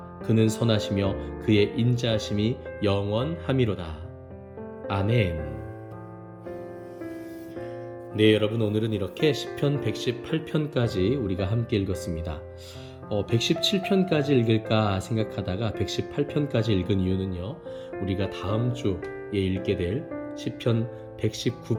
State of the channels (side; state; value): both; identical; correlation 1.00